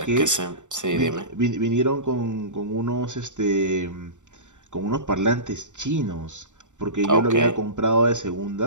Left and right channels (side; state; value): left; late; 0.85 ms